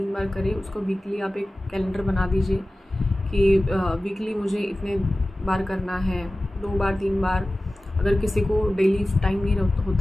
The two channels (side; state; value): both; normal; correlation 0.96